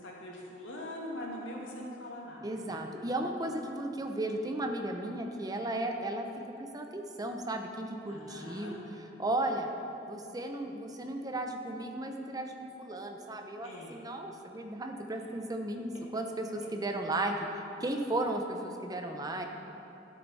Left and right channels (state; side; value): normal; both; correlation 0.43